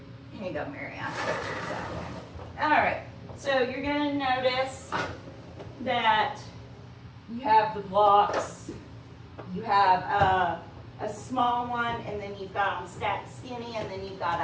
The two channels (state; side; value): identical; both; correlation 1.00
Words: Here you go, Marianne. All right, so you're going to notice that you have the blocks. You have a small one, and then you've got them stacked skinny, and then you've got